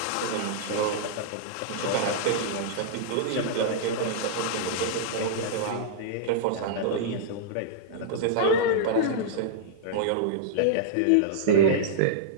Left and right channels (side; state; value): both; different; correlation -0.02